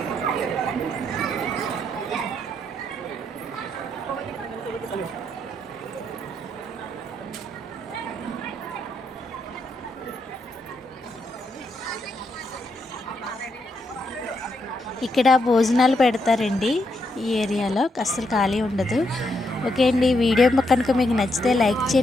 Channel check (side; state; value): both; normal; correlation 0.79